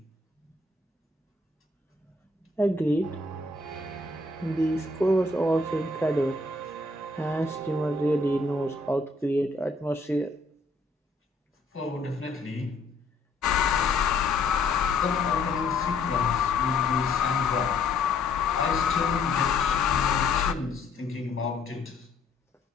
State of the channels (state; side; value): quieter; right; 3.4 dB